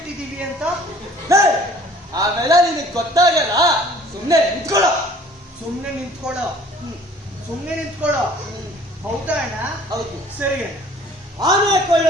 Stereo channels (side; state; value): both; normal; correlation 0.53